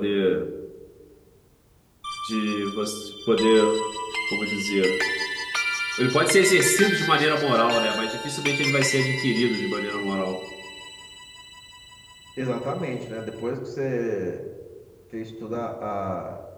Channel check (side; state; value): both; identical; correlation 1.00